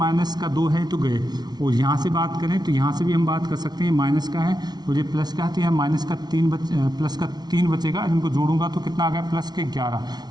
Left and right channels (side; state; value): left; late; 0.19 ms